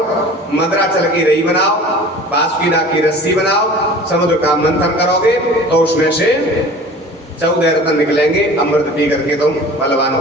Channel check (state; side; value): normal; both; correlation 0.42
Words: मद्राचल की रई बनाओ, बासुकीनाग की रस्सी बनाओ, समुद्र का मंथन करोगे तो उसमें से 14 रत्न निकलेंगे, अमृत पी करके तुम बलवान